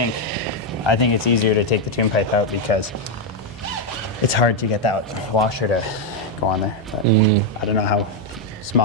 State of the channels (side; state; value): both; normal; correlation 0.02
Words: it's easier to take the tune pipe out because it's hard to get that washer to go on there. But I don't know how